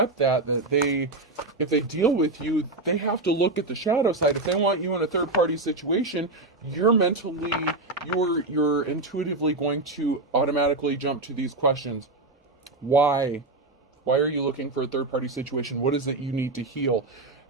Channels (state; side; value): quieter; left; 3.1 dB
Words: that if they deal with you, they have to look at the shadow side. If they want you in a third party situation, you're intuitively going to automatically jump to these questions. Why? Why are you looking for a third party situation? What is it you need to heal?